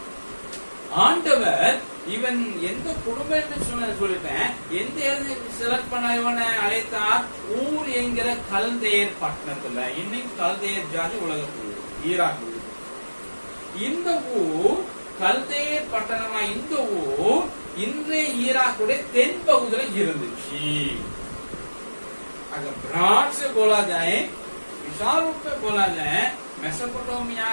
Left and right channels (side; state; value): both; inverted; correlation -1.00